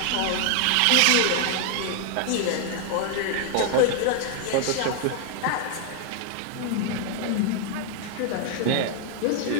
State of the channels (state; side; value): different; both; correlation 0.00